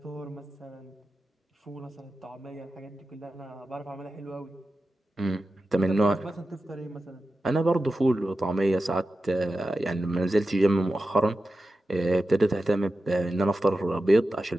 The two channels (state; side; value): normal; both; correlation 0.92